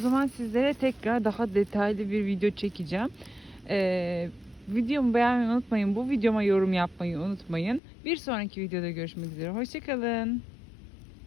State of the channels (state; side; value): drops out; right; at 7.8 s